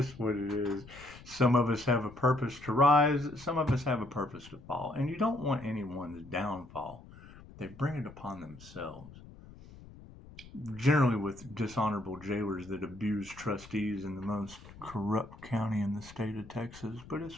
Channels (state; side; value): noise; left; rumble, 19 dB below the sound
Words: what it is. Some of us have a purpose to rise. Some of us have a purpose to fall. And you don't want anyone's downfall. They bring it upon themselves. Generally with dishonorable jailers that abuse trustees in the most corrupt county in the state of Texas. But